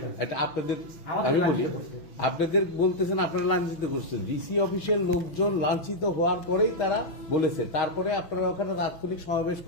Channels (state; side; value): late; right; 6.4 ms